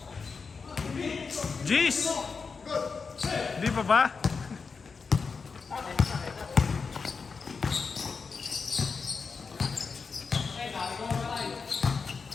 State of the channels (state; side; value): quieter; right; 5.1 dB